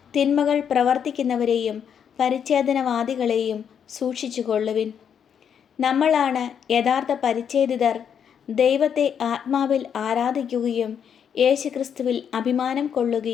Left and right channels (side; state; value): right; quieter; 8.0 dB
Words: തിന്മകൾ പ്രവർത്തിക്കുന്നവരെയും പരിച്ഛേദനവാദികളെയും സൂക്ഷിച്ചുകൊള്ളുവിൻ. നമ്മളാണ് യഥാർത്ഥ പരിച്ഛേദിതർ. ദൈവത്തെ ആത്മാവിൽ ആരാധിക്കുകയും യേശുക്രിസ്തുവിൽ അഭിമാനം